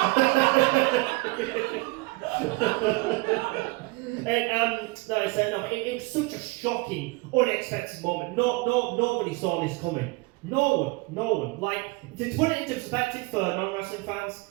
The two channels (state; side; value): quieter; left; 25.3 dB